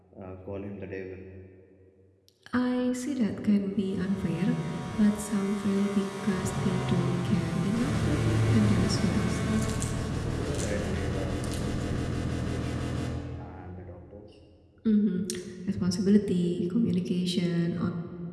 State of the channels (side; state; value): both; identical; correlation 1.00